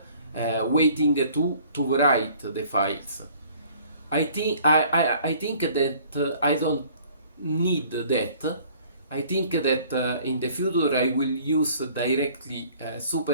waiting to write the files. I think that I don't need that. I think that in the future I will use directly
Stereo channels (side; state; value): both; inverted; correlation -0.54